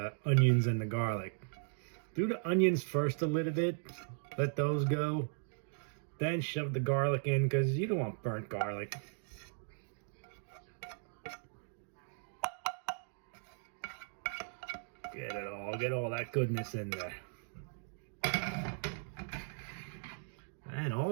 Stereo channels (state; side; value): silent; left; digital silence